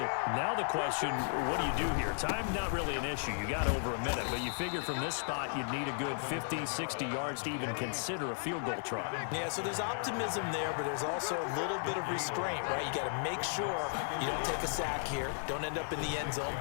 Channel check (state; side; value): silent; right; digital silence